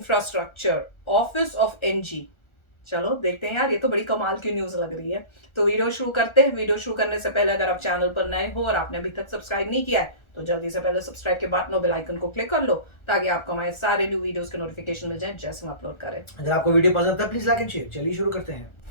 office of NG. चलो देखते हैं यार, ये तो बड़ी कमाल की न्यूज लग रही है। तो वीडियो शुरू करते हैं। वीडियो शुरू करने से पहले अगर आप चैनल पर नए हो और आपने अभी तक सब्सक्राइब नहीं किया है तो जल्दी से पहले सब्सक्राइब के बटन और बेल आइकन को क्लिक कर लो, ताकि आपको हमारे सारे न्यू वीडियोस के नोटिफिकेशन मिल जाए जैसे हम अपलोड करें। अगर आपको वीडियो पसंद आता है प्लीज लाइक एंड शेयर। चलिए शुरू करते हैं।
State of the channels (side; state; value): right; late; 1.4 ms